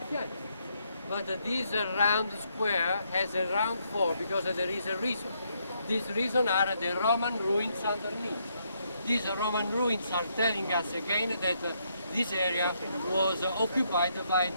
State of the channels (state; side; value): inverted; both; correlation -0.75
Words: But this round square has a round floor because there is a reason. This reason are the Roman ruins underneath. these Roman ruins are telling us again that this area was occupied by